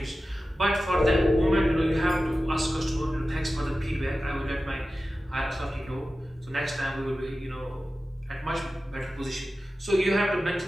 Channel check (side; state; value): both; normal; correlation 0.94